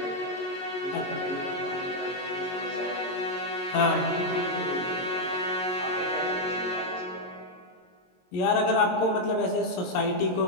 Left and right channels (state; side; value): late; right; 22 ms